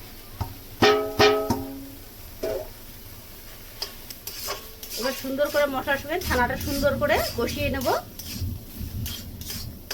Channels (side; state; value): both; identical; correlation 1.00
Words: এবার সুন্দর করে মশলার সঙ্গে ছানাটা সুন্দর করে কষিয়ে নেব।